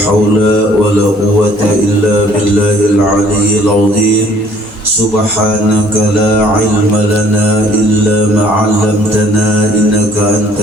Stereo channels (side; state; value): both; normal; correlation 0.58